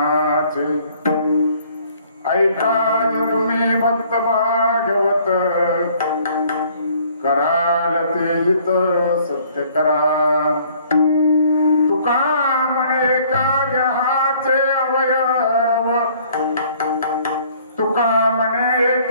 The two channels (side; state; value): both; inverted; correlation -0.58